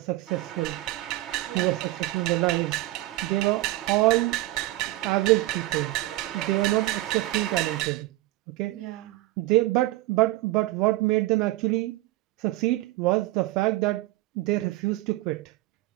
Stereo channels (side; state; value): left; quieter; 17.6 dB